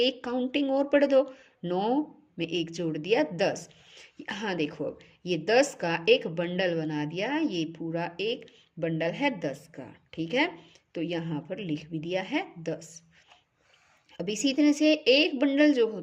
काउंटिंग और पढ़ दो। 9 में 1 जोड़ दिया 10। हाँ देखो, अब ये 10 का एक बंडल बना दिया। ये पूरा एक बंडल है 10 का। ठीक है, तो यहाँ पर लिख भी दिया है 10। अब इसी तरह से एक बंडल जो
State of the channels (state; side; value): identical; both; correlation 1.00